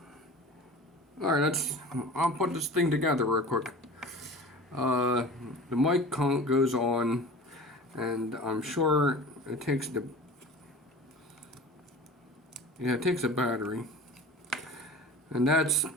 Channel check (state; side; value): normal; both; correlation 0.38